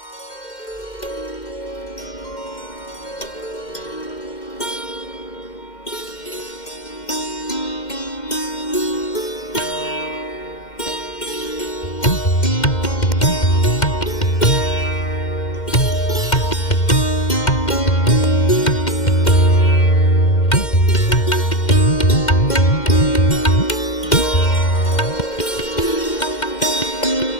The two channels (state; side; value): late; right; 2.1 ms